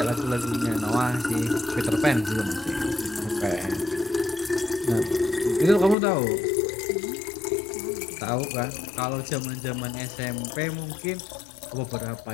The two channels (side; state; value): right; drops out; at 6.0 s